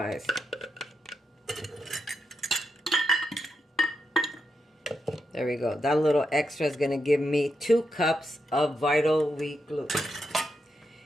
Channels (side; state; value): both; normal; correlation 0.84